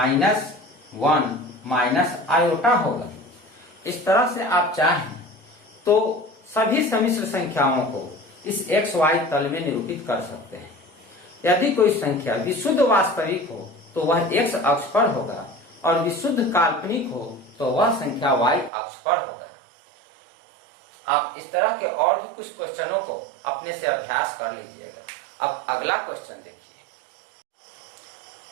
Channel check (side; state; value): left; drops out; at 18.7 s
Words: माइनस आयोटा होगा। इस तरह से आप चाहें तो सभी सम्मिश्र संख्याओं को इस XY तल में निरूपित कर सकते हैं। यदि कोई संख्या विशुद्ध वास्तविक हो तो वह X अक्ष पर होगा और विशुद्ध काल्पनिक हो तो वह संख्या Y अक्ष पर होगा। आप इस तरह के और भी कुछ क्वेश्चनों को अपने से अभ्यास कर लीजिएगा। अब अगला क्वेश्चन देखिए।